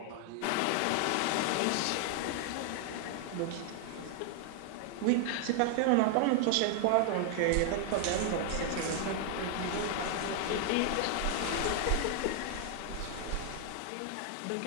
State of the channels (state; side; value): different; both; correlation 0.00